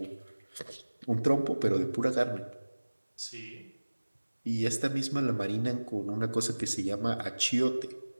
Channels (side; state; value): both; inverted; correlation -1.00